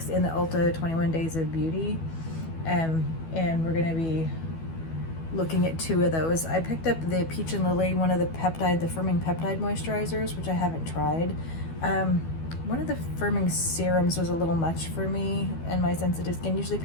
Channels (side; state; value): right; late; 12 ms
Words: in the Ulta 21 Days of Beauty, and we're gonna be looking at two of those. I picked up the Peach and Lily, one of the firming peptide moisturizers, which I haven't tried. One of the firming serums was a little much for me and my sensitive skin. Usually